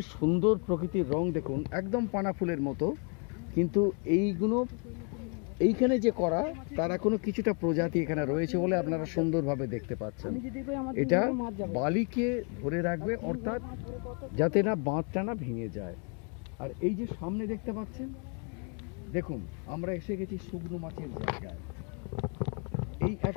সুন্দর প্রকৃতির রং, দেখুন একদম পানা ফুলের মতো, কিন্তু এইগুলো এইখানে যে করা তার এখনো কিছুটা প্রজাতি এখানে রয়েছে বলে আপনারা সুন্দরভাবে দেখতে পাচ্ছেন। এটা বালিকে ধরে রাখবে, অর্থাৎ যাতে না বাঁধটা না ভেঙে যায়। আর এই যে সামনে দেখতে পাচ্ছেন, দেখুন আমরা এসে গেছি শুকনো মাছের জায়গায়। এই এক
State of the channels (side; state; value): right; quieter; 38.1 dB